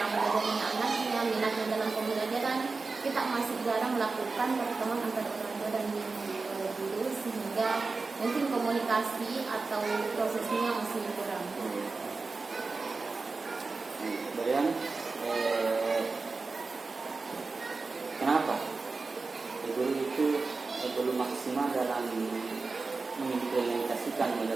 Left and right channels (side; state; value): left; quieter; 4.0 dB